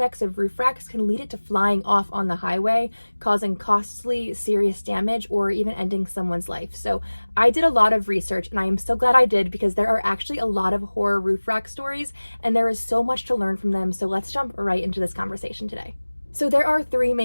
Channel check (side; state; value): both; inverted; correlation -1.00